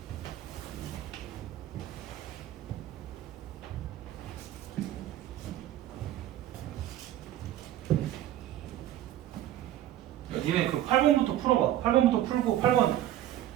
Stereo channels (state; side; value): quieter; left; 12.8 dB